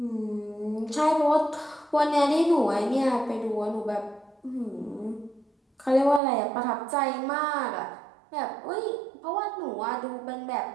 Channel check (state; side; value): drops out; left; at 6.2 s